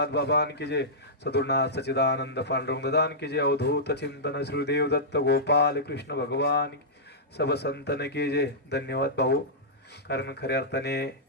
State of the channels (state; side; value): normal; both; correlation -0.15